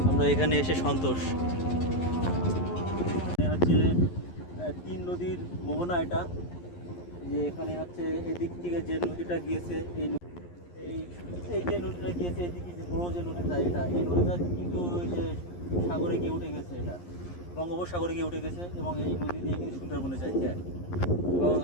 আমরা এখানে এসে সন্তোষ। হচ্ছে তিন নদীর মোহনা এটা, যে এখানে হচ্ছে এদিক থেকে যে নদীটা গিয়েছে, এই এই যে নদীটা গিয়েছে এদিকে যে বড় যে নদীটা, এই নদীটা কিন্তু ওই যে সাগরে গিয়ে উঠে গেছে, এটা বঙ্গোপসাগরে গিয়ে উঠে গেছে এবং এই নদী দিয়ে কিন্তু সুন্দরবনে যাইছে। এবং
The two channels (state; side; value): late; right; 11 ms